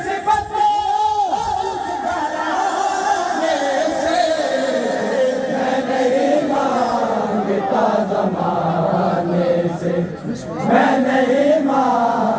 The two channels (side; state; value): both; identical; correlation 1.00